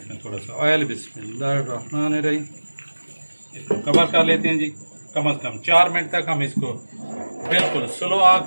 थोड़ा सा ऑयल, बिस्मिल्लाहिर्रहमानिर्रहीम। इसको कवर कर लेते हैं जी कम से कम 4 मिनट तक हम इसको बिल्कुल स्लो आग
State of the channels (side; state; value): both; inverted; correlation -1.00